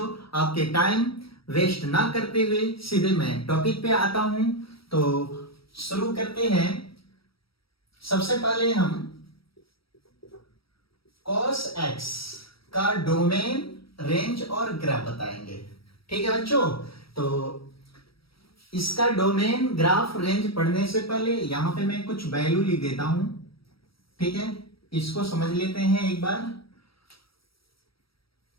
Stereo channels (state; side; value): late; right; 0.75 ms